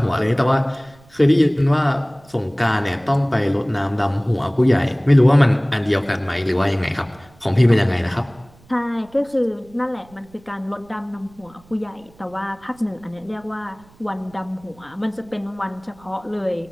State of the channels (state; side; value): noise; right; rumble, 27 dB below the sound